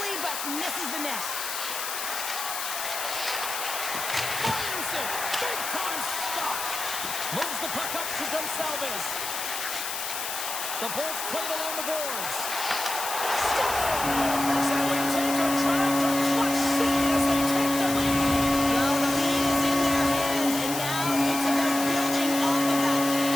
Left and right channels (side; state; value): left; noise; hiss, 5 dB below the sound